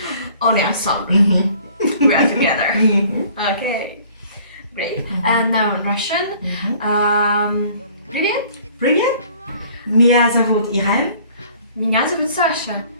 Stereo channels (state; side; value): inverted; both; correlation -0.54